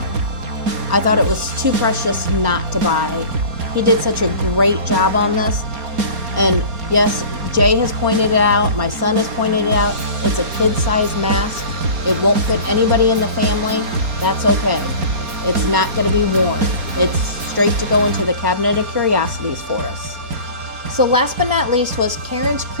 I thought it was too precious not to buy. He did such a great job on this. And yes, Jay has pointed it out. My son has pointed it out. It's a kid-sized mask. It won't fit anybody in the family. That's okay. It's not going to be worn. It's straight to go into the cabinet of curiosities for us. So last but not least was Karen's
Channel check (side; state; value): left; late; 4.3 ms